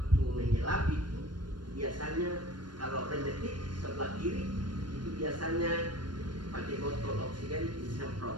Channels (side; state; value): left; late; 0.71 ms